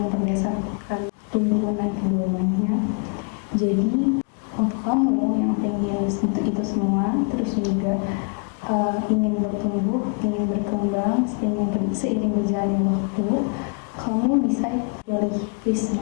berdasarkan tuntunan keilmuannya. Jadi untuk kamu yang pengen untuk itu semua, terus juga ingin bertumbuh, ingin berkembang, seiring berjalannya waktu, kamu bisa pilih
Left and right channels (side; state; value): right; quieter; 34.5 dB